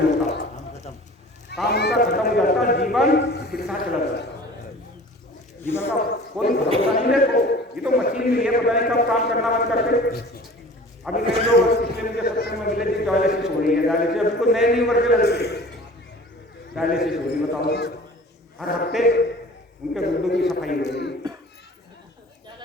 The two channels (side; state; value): both; normal; correlation 0.44